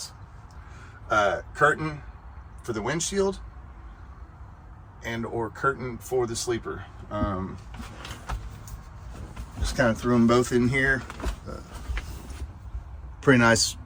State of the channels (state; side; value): identical; both; correlation 1.00